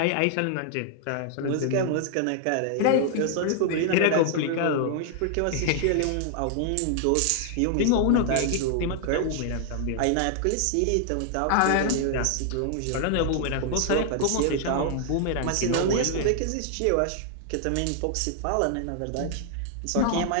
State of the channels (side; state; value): both; different; correlation 0.00